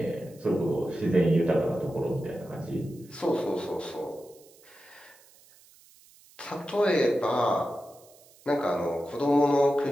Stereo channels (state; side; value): noise; right; hiss, 26 dB below the sound